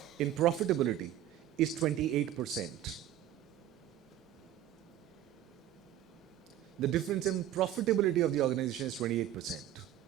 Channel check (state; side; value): quieter; left; 12.0 dB